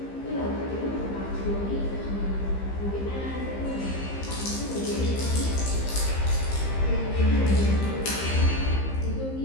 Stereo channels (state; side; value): late; right; 15 ms